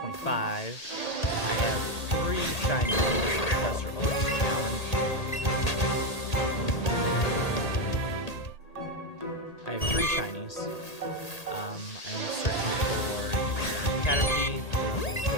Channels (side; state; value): right; late; 1.8 ms